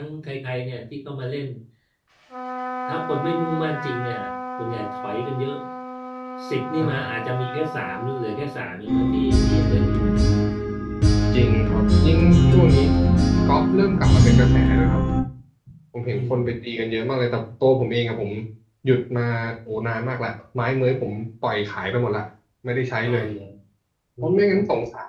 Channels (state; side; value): identical; both; correlation 1.00